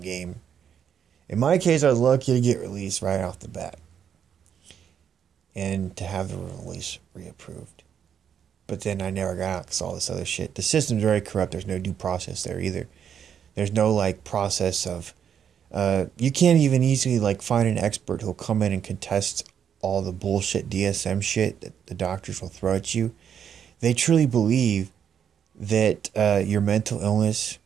game. In my case, I was lucky to get released right off the bat. And to have the release reapproved. But then I never got out because all this other shit. The system's very corrupt. There's no due process there either. There's no, process of... you can't even easily, find an expert who'll come in and contest all the bullshit DSM shit that the doctors will throw at you. They truly believe that your mental illness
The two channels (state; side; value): quieter; left; 8.3 dB